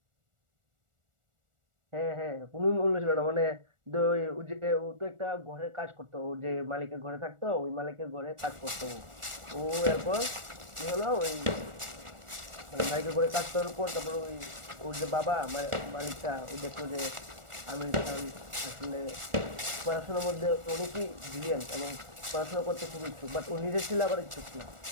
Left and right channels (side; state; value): left; late; 1.4 ms